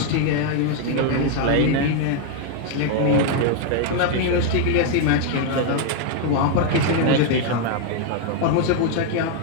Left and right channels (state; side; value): different; both; correlation 0.00